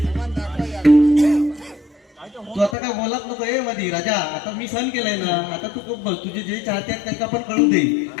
तू आता काय बोलत नको ए मधी राजा. आता मी सहन केलंय ना. आता तू खूप बोल. तुझे जे चाहते आहेत त्यांना पण कळू दे.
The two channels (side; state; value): right; drops out; at 2.8 s